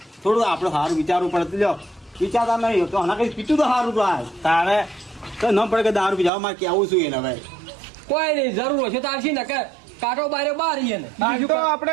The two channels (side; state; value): left; drops out; at 6.3 s